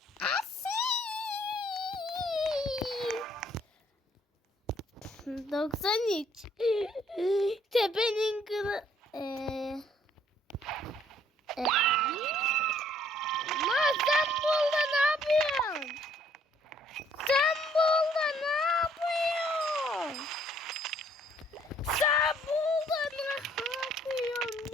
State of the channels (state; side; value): normal; both; correlation 0.63